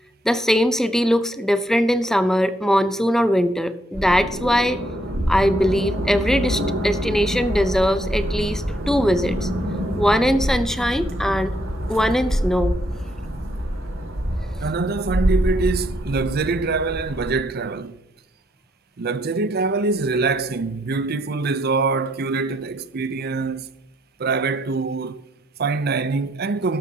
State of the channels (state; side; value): normal; both; correlation 0.73